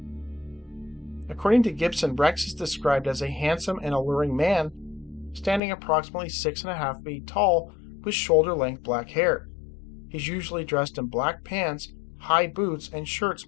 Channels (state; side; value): drops out; right; at 5.6 s